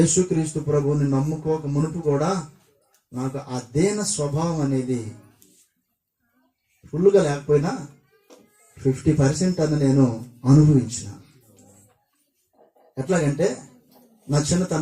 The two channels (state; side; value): identical; both; correlation 1.00